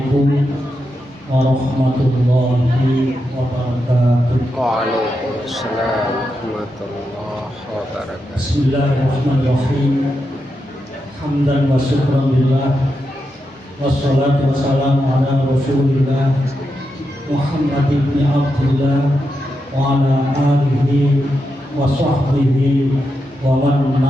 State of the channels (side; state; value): both; normal; correlation 0.86